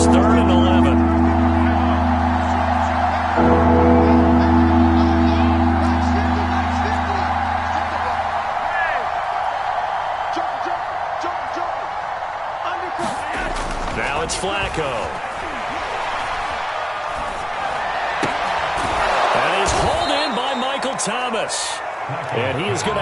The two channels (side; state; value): both; identical; correlation 1.00